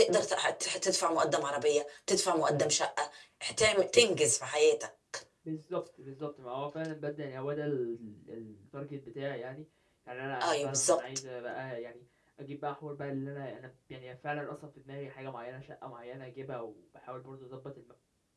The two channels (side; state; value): both; identical; correlation 1.00